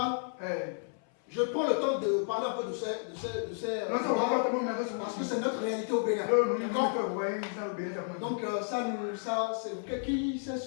Je prends le temps de parler un peu de ces parce que c'est notre réalité au Bénin. Donc ça, c'est qui sait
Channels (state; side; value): silent; right; 56 dB below the other